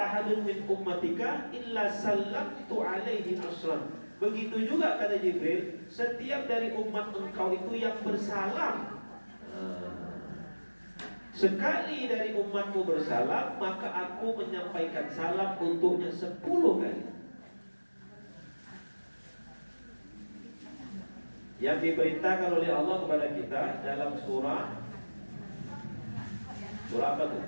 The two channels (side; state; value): both; inverted; correlation -1.00